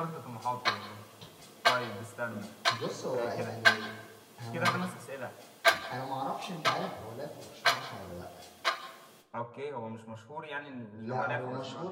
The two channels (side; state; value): both; identical; correlation 1.00